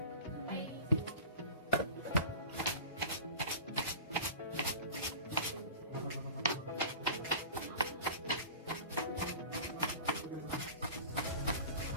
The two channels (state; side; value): inverted; both; correlation -0.36